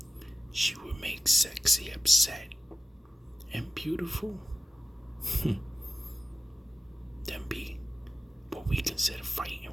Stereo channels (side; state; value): both; normal; correlation 0.93